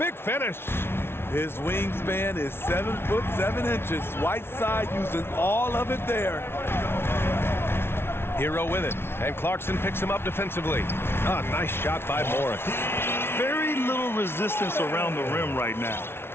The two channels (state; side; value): late; right; 0.12 ms